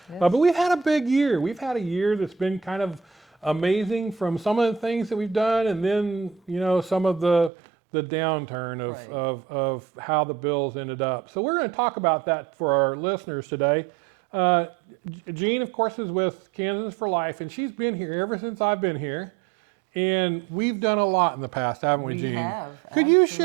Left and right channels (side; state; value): left; drops out; at 7.5 s